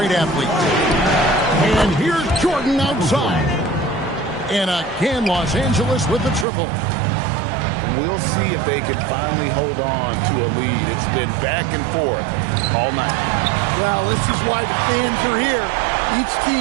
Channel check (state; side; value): drops out; left; at 6.5 s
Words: athlete. And here's Jordan outside. And again, Los Angeles with the triple. We'll see if they can finally hold on to a lead. It's been back and forth all night. Well, this is why the fans are here. Each